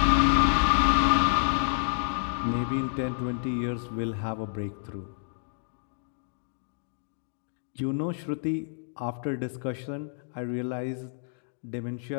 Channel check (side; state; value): right; silent; digital silence